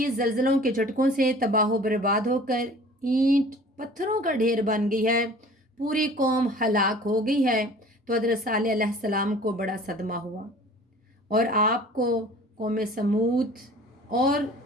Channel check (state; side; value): normal; both; correlation 0.47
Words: زلزلوں کے جھٹکوں سے تباہ و برباد ہو کر اینٹ پتھروں کا ڈھیر بن گئی ہے، پوری قوم ہلاک ہو گئی ہے، تو حضرت صالح علیہ السلام کو بڑا صدمہ ہوا اور آپ کو قوم سمود اور